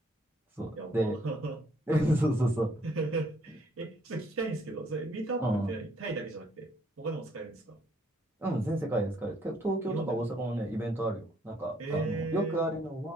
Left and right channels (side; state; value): both; normal; correlation 0.67